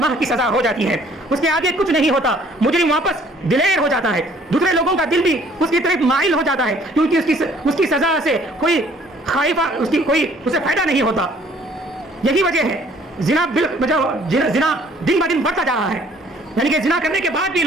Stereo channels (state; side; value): normal; both; correlation 0.58